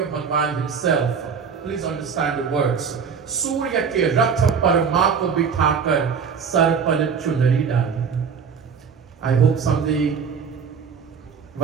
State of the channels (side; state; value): left; quieter; 6.3 dB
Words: Bhagwan himself. Please understand the words. Surya ke rath par maa ko bithakar, sar par chunari dali. I hope someday,